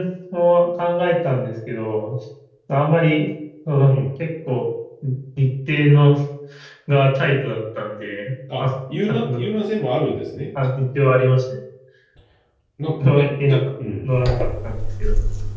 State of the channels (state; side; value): identical; both; correlation 1.00